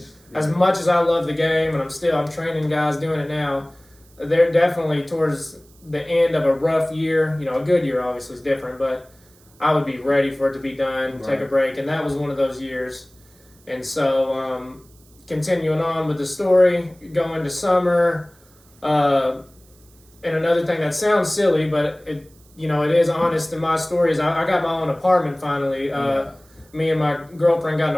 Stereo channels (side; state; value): right; noise; hiss, 29 dB below the sound